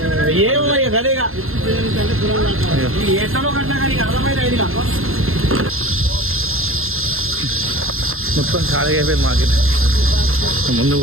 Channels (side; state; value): left; late; 0.61 ms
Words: మొత్తం ఖాళీగా అయిపోయింది మార్కెట్. ముందుకు